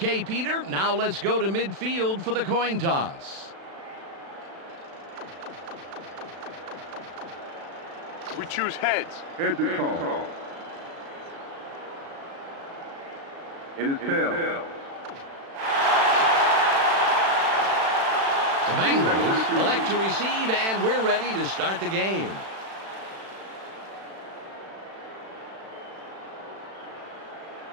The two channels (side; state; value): left; late; 36 ms